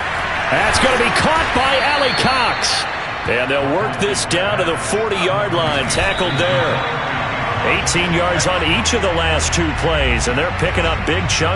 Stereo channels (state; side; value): identical; both; correlation 1.00